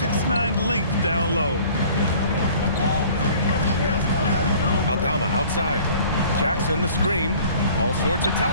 length down low. Aldama outside. Jackson the screen. All sorts of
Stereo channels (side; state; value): both; inverted; correlation -0.50